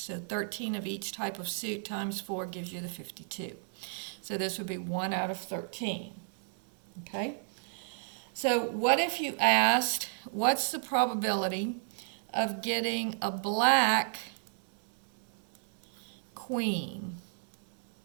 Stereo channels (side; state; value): left; silent; digital silence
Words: 13 of each type of suit times 4 gives you the 52. So this would be 1 out of 13. Okay? So what if you asked, what's the probability of getting a black queen?